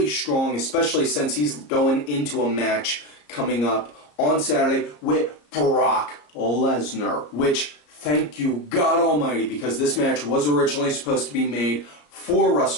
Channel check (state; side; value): late; right; 34 ms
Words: strong, especially since he's going into a match coming up on Saturday with Brock Lesnar, which, thank you God Almighty, because this match was originally supposed to be made for